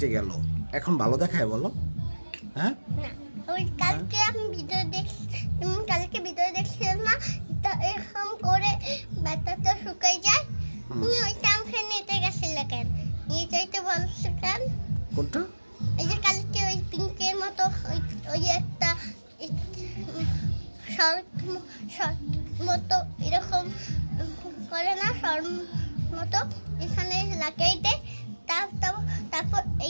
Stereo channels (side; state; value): both; inverted; correlation -1.00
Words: গেল, এখন ভালো দেখায় বলো? হ্যাঁ, না, ওই কালকে আমি ভিডিও দেখছি, তুমি কালকে ভিডিও দেখছিলাম না, তো এরকম করে ব্যথাটা শুকাই যায়। তুমি ওই টামখে নিতে গেছিলে কেন? নিয়ে যাইতে বলছো কেন? কোনটা? এই যে কালকে ওই পিঙ্কের মতো ওই একটা শর্ট মতো এরকম করে না, শর্ট মতো এখানে লাগাইতে, তারপর এই